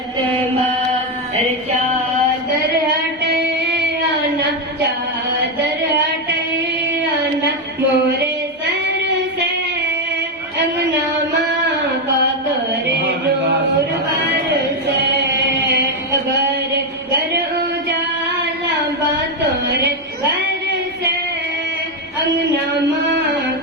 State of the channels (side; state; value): both; normal; correlation 0.06